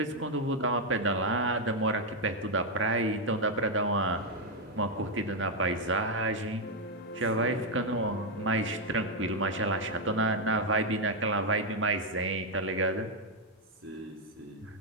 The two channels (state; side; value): normal; both; correlation 0.00